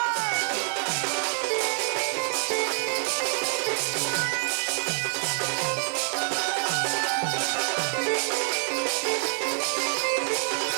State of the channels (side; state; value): left; silent; 57 dB below the other